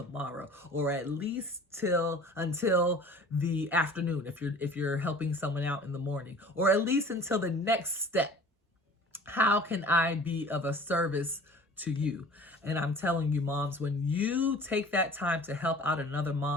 or at least until the afternoon if you're helping someone out in the morning, or at least until the next step? How can I be of a service to you? And I'm telling you, moms, when you take that time to help out another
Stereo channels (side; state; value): both; normal; correlation 0.45